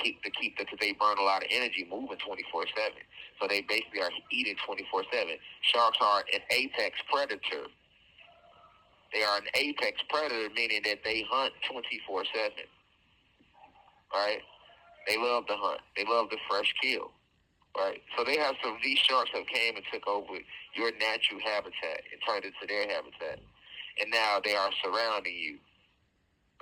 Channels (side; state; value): both; identical; correlation 1.00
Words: they burn a lot of energy moving 24/7. So they basically are eating 24/7. Sharks are an apex predator. They are an apex predator, meaning that they hunt 24/7. Right? They love to hunt. They love the fresh kill. Right? So they have these sharks that came and took over your natural habitat and turned it to their habitat. And now they are surrounding you.